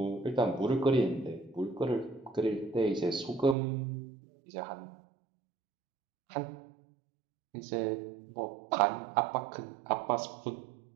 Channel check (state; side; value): drops out; left; at 3.6 s